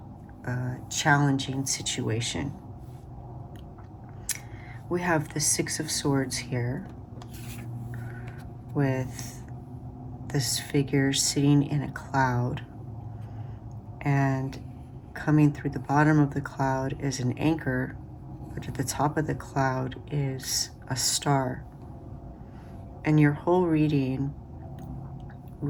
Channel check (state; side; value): identical; both; correlation 1.00